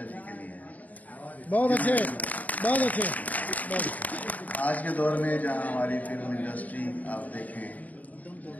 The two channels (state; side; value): late; right; 0.074 ms